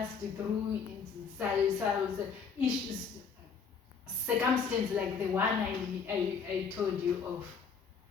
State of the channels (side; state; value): right; quieter; 6.0 dB